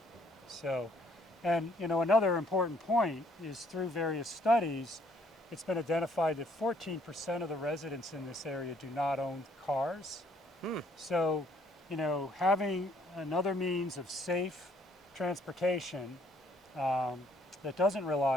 So, and another important point is through various studies, it's been identified that 14% of the residents in this area do not own cars. So, having another means of safe transportation that doesn't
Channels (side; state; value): both; normal; correlation 0.64